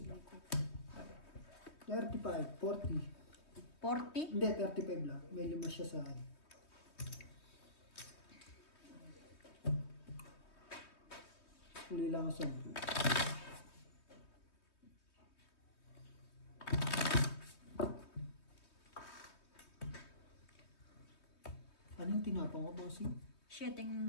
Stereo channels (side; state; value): right; late; 3.2 ms